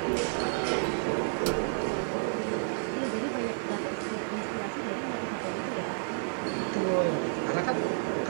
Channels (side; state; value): left; silent; 57 dB below the other